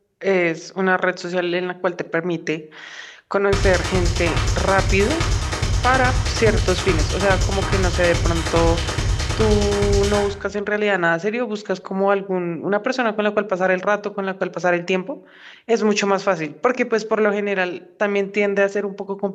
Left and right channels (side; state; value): both; identical; correlation 1.00